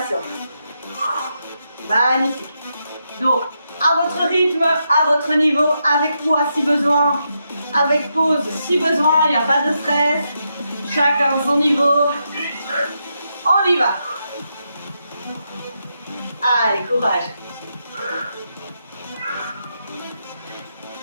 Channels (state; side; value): inverted; both; correlation -0.83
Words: Magnifique. Donc, à votre rythme, à votre niveau, avec poids si besoin, avec pause si besoin, il n'y a pas de stress. Chacun son niveau. On y va. Allez, courage.